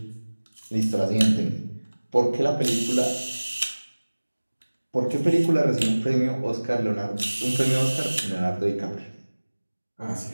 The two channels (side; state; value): both; inverted; correlation -1.00